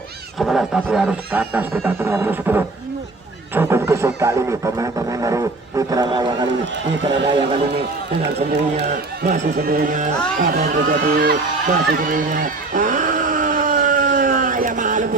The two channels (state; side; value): quieter; left; 3.3 dB